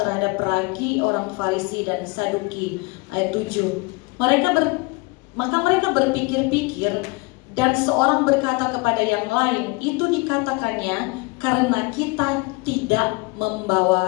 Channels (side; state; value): right; quieter; 26.5 dB